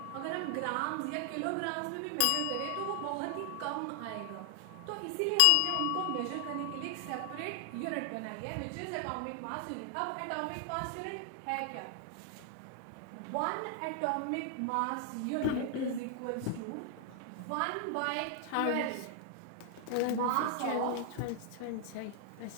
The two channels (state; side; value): different; both; correlation 0.00